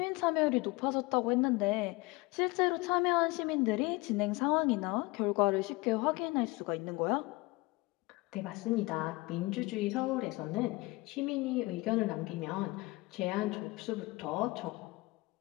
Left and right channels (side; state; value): right; quieter; 23.1 dB